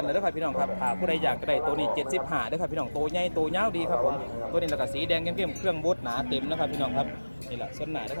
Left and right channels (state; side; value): inverted; both; correlation -1.00